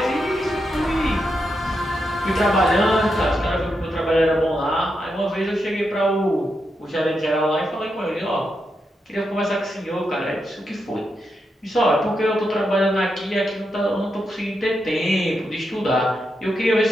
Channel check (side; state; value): both; normal; correlation 0.85